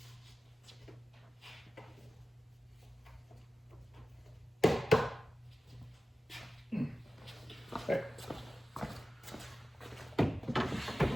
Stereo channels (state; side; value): normal; both; correlation 0.94